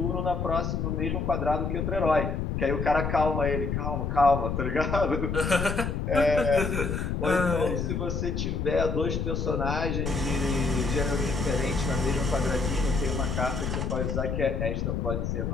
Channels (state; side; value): noise; left; rumble, 1 dB below the sound